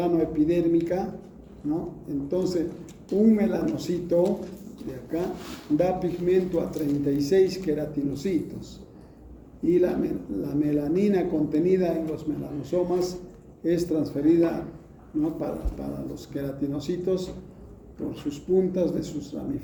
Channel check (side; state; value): both; identical; correlation 1.00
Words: ¿no? Entonces, un melanocito de acá da pigmento a 36 queratinocitos y la melanina contenida en los melanosomas es transferida, ¿no? para los queratinocitos por sus puntas de sus